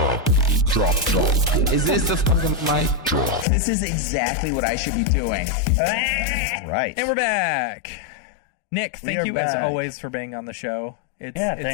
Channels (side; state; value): right; drops out; at 3.5 s